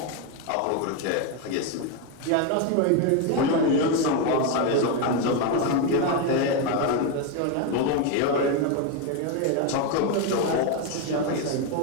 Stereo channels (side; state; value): both; different; correlation 0.02